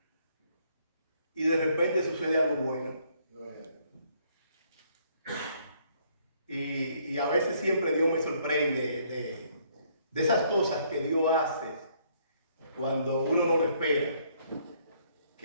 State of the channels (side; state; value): both; inverted; correlation -0.67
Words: y de repente sucede algo bueno. Y a veces siempre Dios me sorprende de esas cosas que Dios hace cuando uno no lo espera,